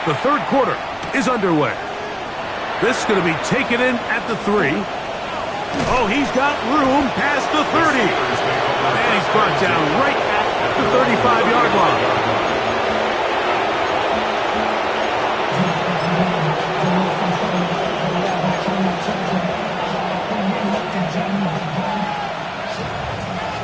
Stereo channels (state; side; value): identical; both; correlation 1.00